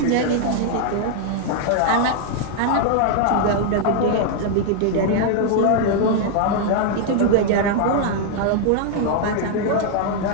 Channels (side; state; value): both; different; correlation 0.00